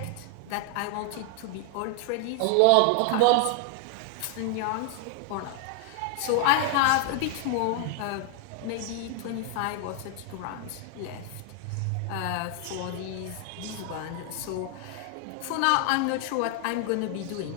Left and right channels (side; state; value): both; different; correlation 0.00